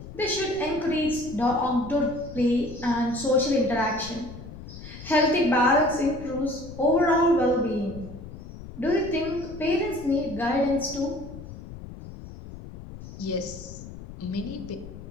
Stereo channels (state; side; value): noise; left; rumble, 13 dB below the sound